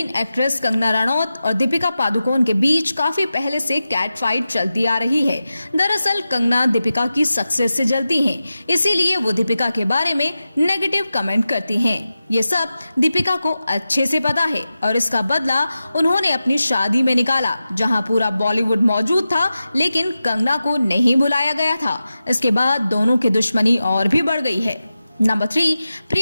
एक्ट्रेस कंगना रनौत और दीपिका पादुकोण के बीच काफी पहले से कैट फाइट चलती आ रही है। दरअसल कंगना दीपिका की सक्सेस से जलती हैं, इसीलिए वो दीपिका के बारे में नेगेटिव कमेंट करती हैं। ये सब दीपिका को अच्छे से पता है और इसका बदला उन्होंने अपनी शादी में निकाला, जहां पूरा बॉलीवुड मौजूद था लेकिन कंगना को नहीं बुलाया गया था। इसके बाद दोनों की दुश्मनी और भी बढ़ गई है। नंबर 3,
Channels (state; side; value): inverted; both; correlation -0.93